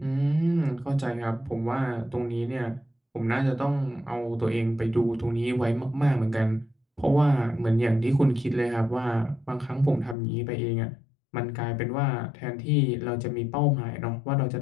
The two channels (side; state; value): right; drops out; at 10.2 s